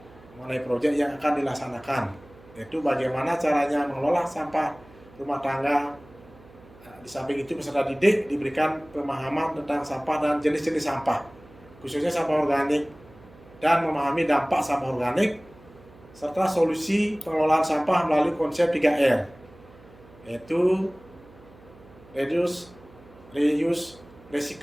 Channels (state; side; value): noise; right; hum, 24 dB below the sound